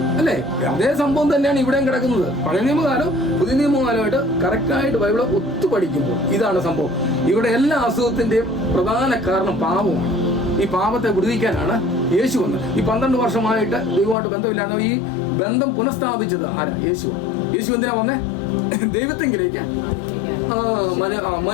അല്ലേ? അതേ സംഭവം തന്നെയാണ് ഇവിടെയും കിടക്കുന്നത്. പഴയ നിയമകാലം പുതിയ നിയമകാലമായിട്ട് കറക്റ്റായിട്ട് ബൈബിള് ഒത്തു പഠിക്കുമ്പോൾ ഇതാണ് സംഭവം. ഇവിടെ എല്ലാ അസുഖത്തിന്റെയും പ്രധാന കാരണം പാപമാണ്. ഈ പാപത്തെ വിടുവിക്കാനാണ് യേശു വന്നത്. ഈ 12 വർഷമായിട്ട് ദൈവമായിട്ട് ബന്ധമില്ലാതെ ഈ ബന്ധം പുനഃസ്ഥാപിച്ചത് ആരാ? യേശുവാണ്. യേശു എന്തിനാ വന്നേ? ദൈവത്തെങ്കിലേക്ക്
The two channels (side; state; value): right; drops out; at 14.2 s